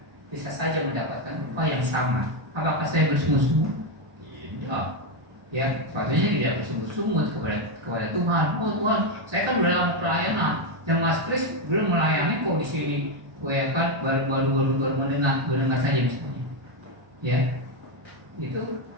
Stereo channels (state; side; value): late; left; 1.3 ms